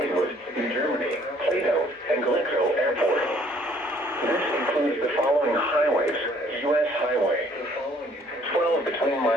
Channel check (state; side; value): normal; both; correlation 0.60